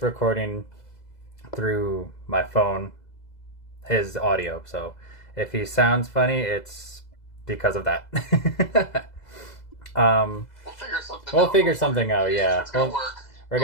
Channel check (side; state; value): right; late; 2.0 ms